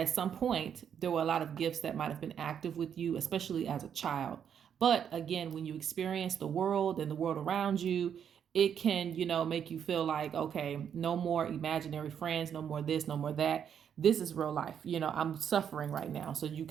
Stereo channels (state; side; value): quieter; left; 8.3 dB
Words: some point there were a lot of gifts that might have been active with you, especially as a child. But again, when you experience the world and the world around you, it can, make you feel like, okay, no more imaginary friends, no more this, no more that. This is real life. I'm suffering right now. So you